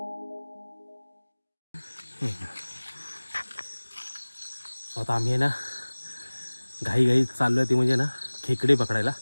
आता आम्ही ना घाई चाललोय ते म्हणजे ना खेकडे पकडायला,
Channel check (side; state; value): both; inverted; correlation -1.00